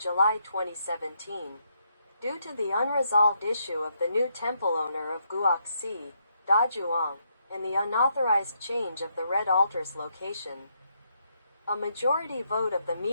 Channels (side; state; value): both; inverted; correlation -0.77